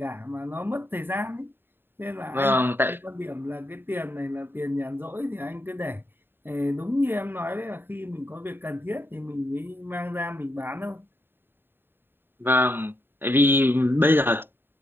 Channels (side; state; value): left; late; 0.10 ms